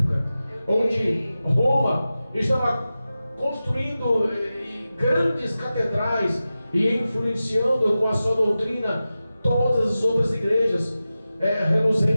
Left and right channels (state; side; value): inverted; both; correlation -0.94